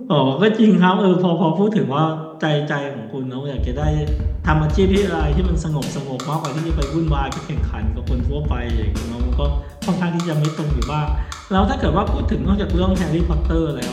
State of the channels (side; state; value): both; identical; correlation 1.00